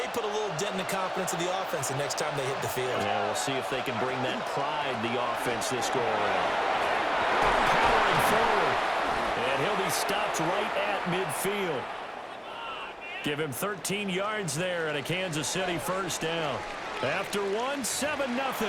put a little dent in the confidence of the offense the next time they hit the field. Yeah, we'll see if they can bring that pride, the offense, this go around. Powering forward. And he'll be stopped right at midfield. Give him 13 yards there and a Kansas City 1st down. After one, 7-0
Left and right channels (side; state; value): both; identical; correlation 1.00